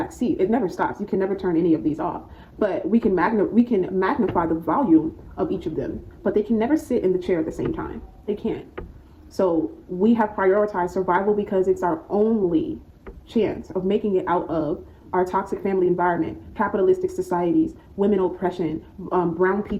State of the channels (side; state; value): both; identical; correlation 1.00